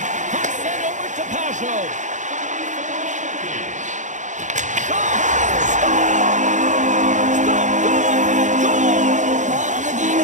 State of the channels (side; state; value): left; late; 0.36 ms